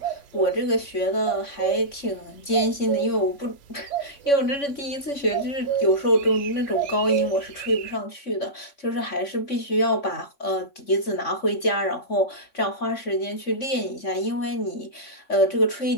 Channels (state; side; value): late; right; 3.6 ms